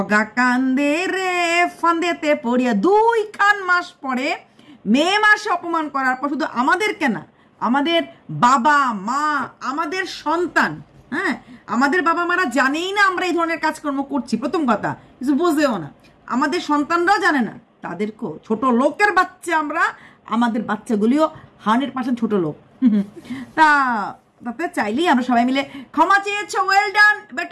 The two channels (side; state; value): both; identical; correlation 1.00